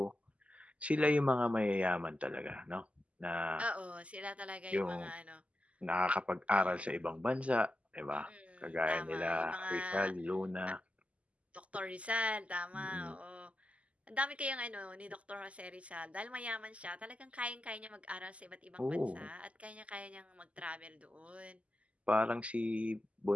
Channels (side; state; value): left; late; 0.065 ms